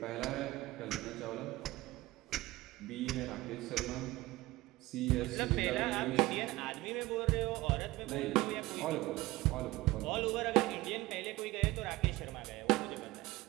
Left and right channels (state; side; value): quieter; left; 19.3 dB